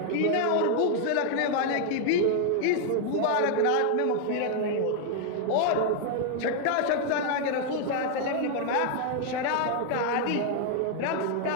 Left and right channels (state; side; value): different; both; correlation 0.00